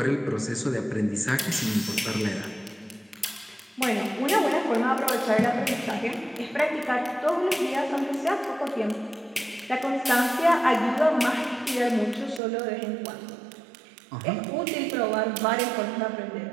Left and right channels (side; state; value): left; drops out; at 12.4 s